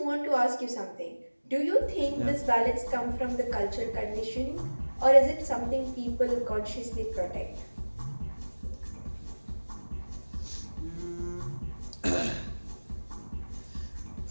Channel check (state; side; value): inverted; both; correlation -1.00